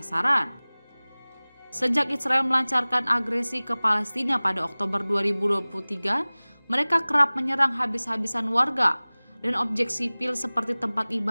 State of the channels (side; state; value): both; inverted; correlation -1.00